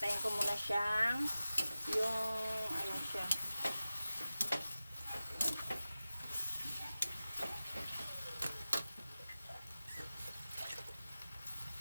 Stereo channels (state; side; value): inverted; both; correlation -0.96